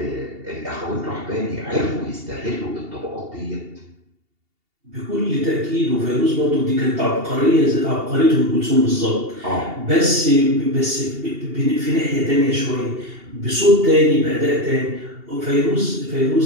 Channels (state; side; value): late; left; 2.8 ms